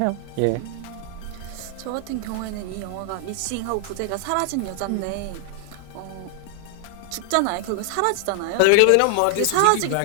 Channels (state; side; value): different; both; correlation 0.00